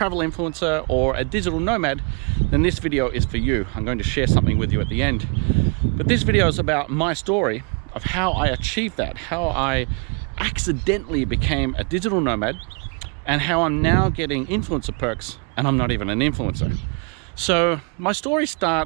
influencer or a digital nomad, then this video is for you. I'm going to share something with you at the end. But this video is about my story of how I achieved that, how I accidentally became a digital nomad, and how I'm now getting influencer perks and I'm not even an influencer. So my story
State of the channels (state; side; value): quieter; left; 36.8 dB